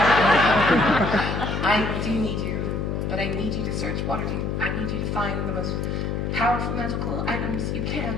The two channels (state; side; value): noise; left; hum, 1 dB below the sound